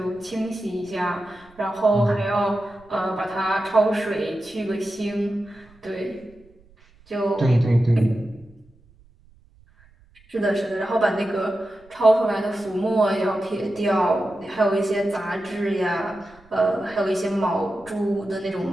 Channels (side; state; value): right; noise; rumble, 29 dB below the sound